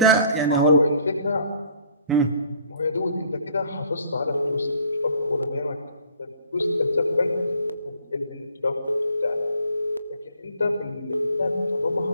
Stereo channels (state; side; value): inverted; both; correlation -0.57